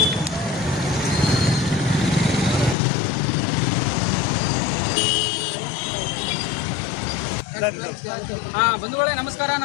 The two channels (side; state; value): right; drops out; at 2.8 s